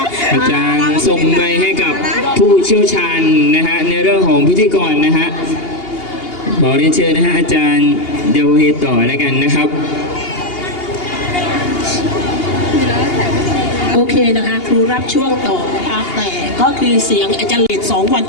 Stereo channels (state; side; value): late; right; 2.8 ms